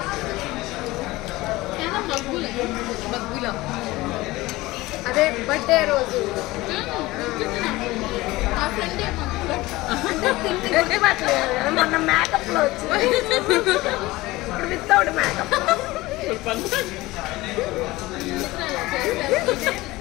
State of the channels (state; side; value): quieter; right; 19.5 dB